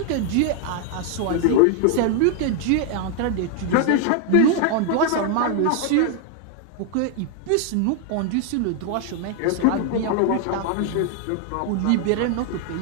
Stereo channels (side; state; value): both; different; correlation 0.00